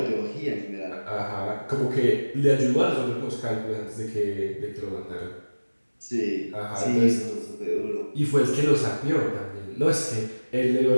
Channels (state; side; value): inverted; both; correlation -1.00